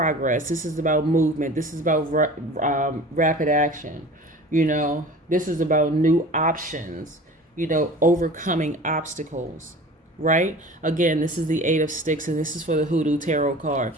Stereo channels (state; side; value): normal; both; correlation 0.41